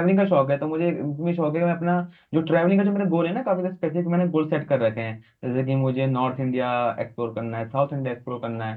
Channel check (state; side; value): identical; both; correlation 1.00